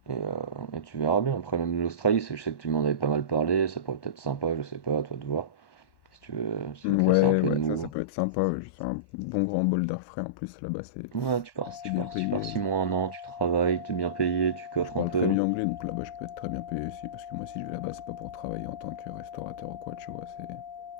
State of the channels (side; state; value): right; late; 1.1 ms